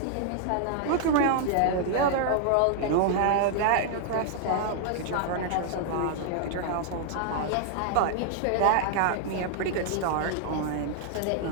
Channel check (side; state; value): both; different; correlation -0.01